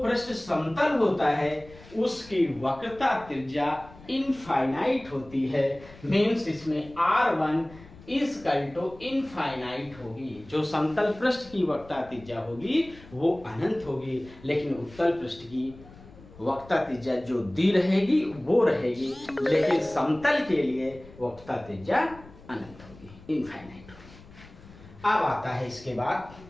पृष्ठ समतल होता है उसकी वक्रता त्रिज्या इनफाइनाइट होती है, मीन्स इसमें R1 इक्वल टू इनफाइनाइट होगी। जो समतल पृष्ठ की वक्रता त्रिज्या होगी वो अनंत होगी, लेकिन उत्तल पृष्ठ की वक्रता त्रिज्या जो दी रहेगी वो रहेगी, लेकिन समतल के लिए वक्रता त्रिज्या अनंत होगी, इनफाइनाइट होगी। अब आता है इसके बाद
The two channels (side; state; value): left; noise; rumble, 21 dB below the sound